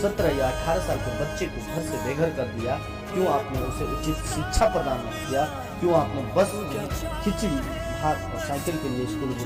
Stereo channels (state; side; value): identical; both; correlation 1.00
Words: 17 या 18 साल के बच्चे को घर से बेघर कर दिया? क्यों आपने उसे उचित शिक्षा प्रदान नहीं किया? क्यों आपने बस खिचड़ी, भात और साइकिल के लिए स्कूल